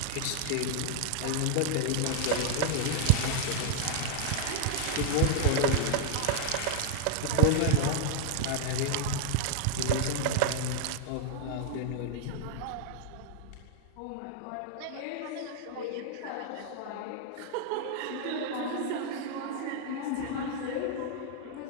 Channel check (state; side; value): different; both; correlation 0.00